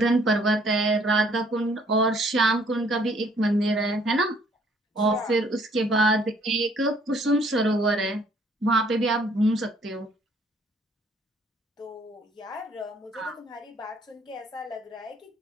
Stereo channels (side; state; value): both; normal; correlation 0.62